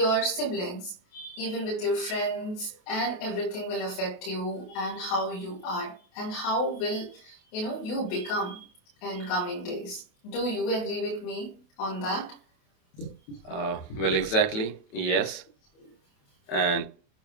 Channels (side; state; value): right; late; 28 ms